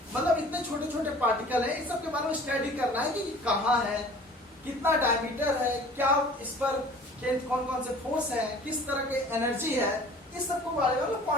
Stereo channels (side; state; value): both; normal; correlation 0.47